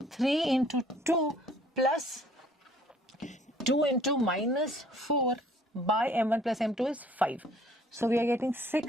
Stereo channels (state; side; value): normal; both; correlation 0.58